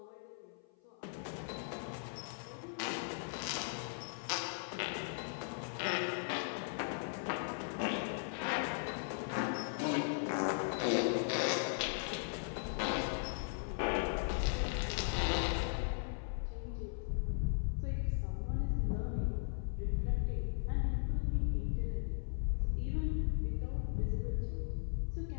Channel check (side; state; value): right; silent; 52 dB below the other